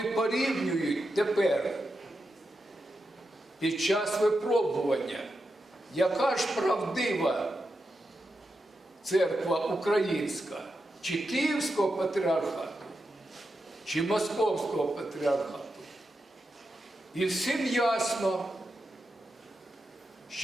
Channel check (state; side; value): normal; both; correlation 0.87